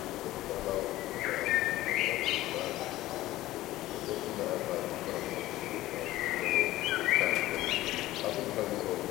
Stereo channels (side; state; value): right; quieter; 16.2 dB